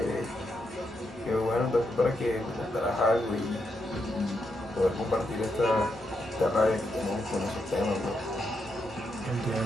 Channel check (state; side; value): normal; both; correlation 0.81